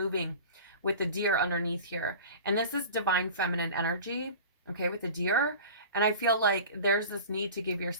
with the deer underneath here. And this is divine feminine energy, okay, with the deer. And I feel like there's this need to give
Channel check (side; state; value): both; inverted; correlation -0.38